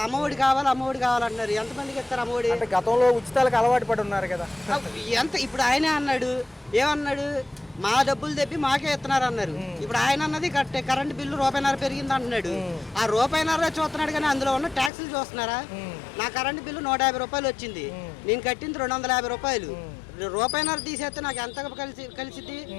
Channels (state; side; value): drops out; right; at 14.9 s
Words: అమ్మఒడి కావాలంటున్నారు. ఎంతమందికి ఇస్తారు అమ్మఒడి? గతంలో ఉచితాలకు అలవాటు పడి ఉన్నారు కదా. ఇప్పుడు ఆయనే అన్నాడు, ఏమన్నాడు? మా డబ్బులు తెప్పి మాకే ఇస్తున్నారు అన్నారు. ఇప్పుడు ఆయన అన్నది కరెంట్ బిల్లు ₹1.50 పెరిగింది అంటున్నాడు. ఆ ₹1.50 చూస్తున్నాడు, కానీ అందులో ఉన్న ట్యాక్సులు చూస్తున్నారా? నా కరెంట్ బిల్లు ₹150 వచ్చింది, నేను కట్టింది ₹250. రూపాయిన్నర తీసేస్తే నాకు ఎంత కలిసిద్ది